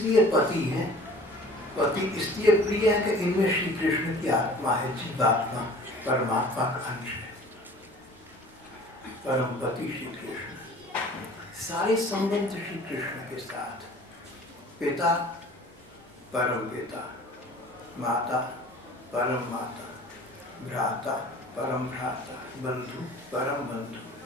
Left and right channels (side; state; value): both; normal; correlation 0.46